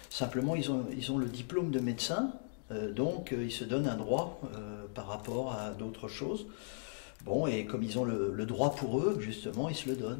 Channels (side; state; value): right; silent; digital silence